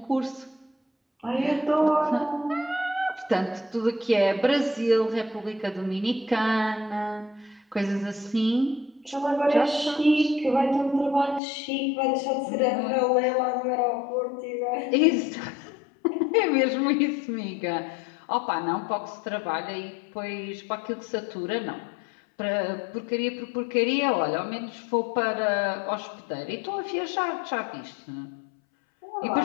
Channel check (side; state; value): right; drops out; at 11.4 s